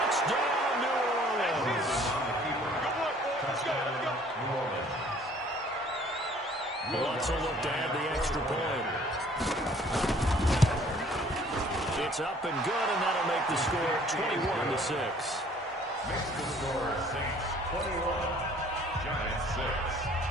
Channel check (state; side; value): normal; both; correlation 0.56